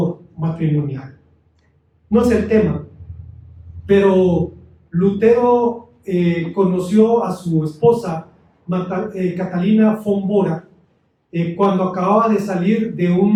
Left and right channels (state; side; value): identical; both; correlation 1.00